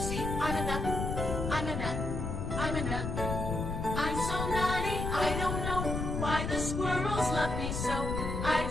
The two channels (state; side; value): noise; left; rumble, 3 dB below the sound